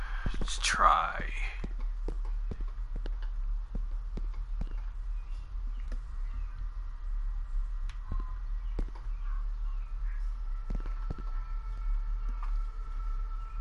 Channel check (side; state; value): both; identical; correlation 1.00